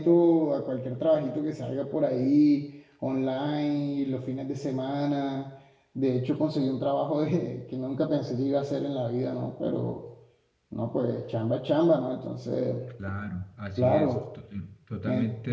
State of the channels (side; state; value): both; identical; correlation 1.00